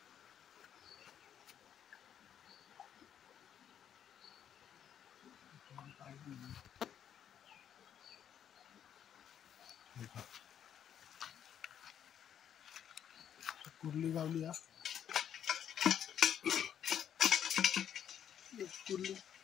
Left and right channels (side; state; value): right; quieter; 9.3 dB